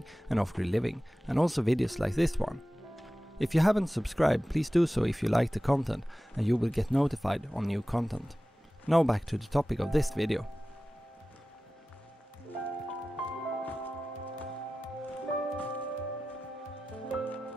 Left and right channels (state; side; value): normal; both; correlation 0.96